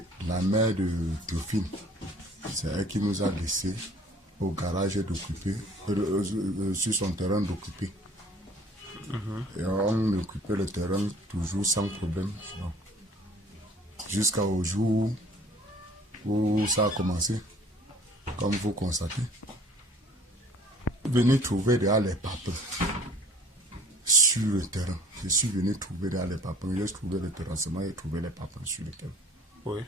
la mère de Théophile, c'est elle qui nous a laissé au garage d'occuper, sur son terrain d'occuper. Et on occupait le terrain toujours sans problème. Jusqu'au jour où ça a commencé, comme vous constatez. Venir trouver derrière les papins sur le terrain. Je suis venu trouver derrière les papins. J'ai trouvé le terrassement et trouvé les papins sur le terrain. Oui.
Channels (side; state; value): both; normal; correlation 0.52